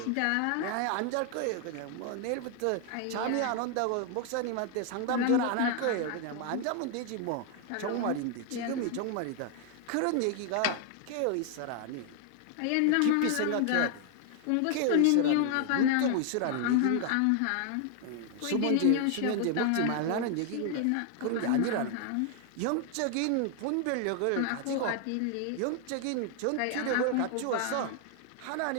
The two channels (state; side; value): different; both; correlation 0.00